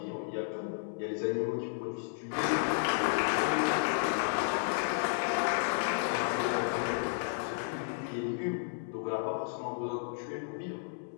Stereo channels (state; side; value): silent; right; digital silence